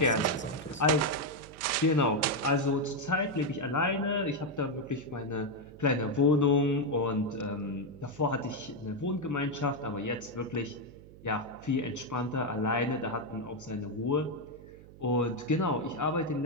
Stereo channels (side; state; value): right; noise; hum, 20 dB below the sound